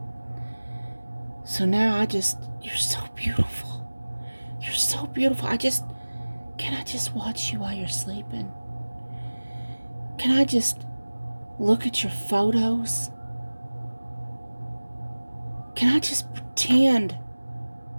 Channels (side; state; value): both; inverted; correlation -1.00